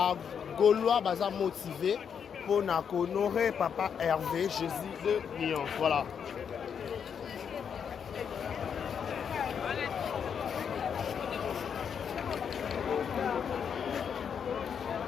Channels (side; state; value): right; quieter; 7.3 dB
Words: Gaulois baza motivé pour honorer papa Hervé Jésus de Lyon. Voilà.